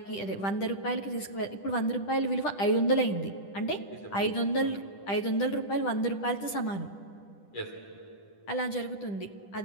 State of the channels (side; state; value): right; late; 10 ms